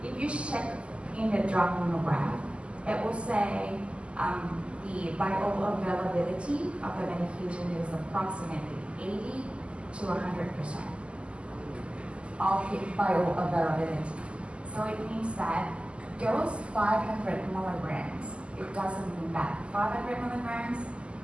if you check in the drug monograph, it will say the bioavailability of the medication is approximately 80 to 100% of the bioavailability. So it means that those 500 milligrams, it doesn't mean that 500 milligrams,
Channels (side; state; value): left; late; 0.054 ms